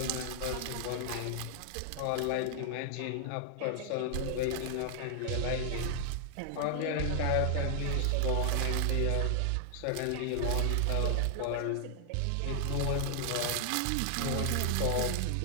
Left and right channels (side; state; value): both; different; correlation 0.00